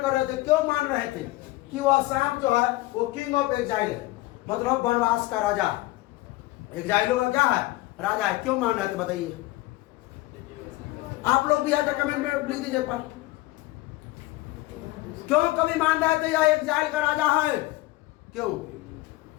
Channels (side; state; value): right; quieter; 18.9 dB